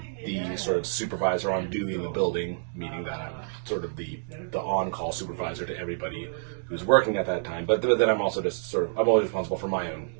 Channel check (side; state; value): left; silent; digital silence